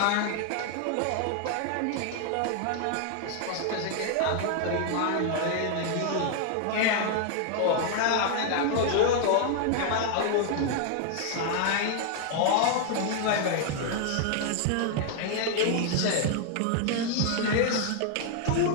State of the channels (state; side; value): different; both; correlation 0.00